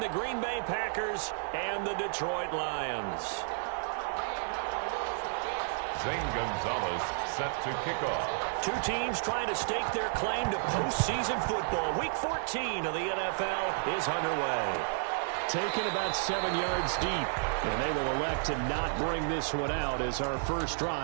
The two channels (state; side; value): silent; left; digital silence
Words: Green Bay Packers and the Detroit Lions. Zane Gonzalez set to kick off. Two teams trying to stake their claim to postseason football. Week 14 of the NFL is underway. Taken about 7 yards deep, and they will elect to not bring this one out as our first